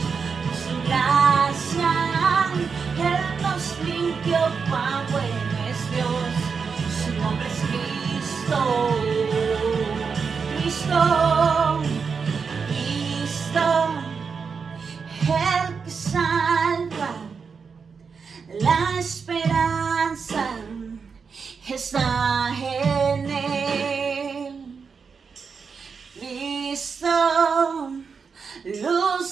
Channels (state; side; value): quieter; left; 5.6 dB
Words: Por su gracia, Él nos limpió, cuán bueno es Dios. Su nombre es Cristo. Cristo, Cristo, el que salva, la esperanza está en Él. Cristo,